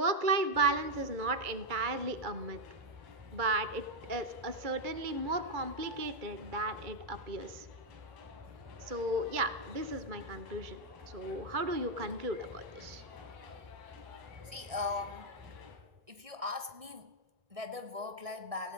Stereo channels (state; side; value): late; left; 1.6 ms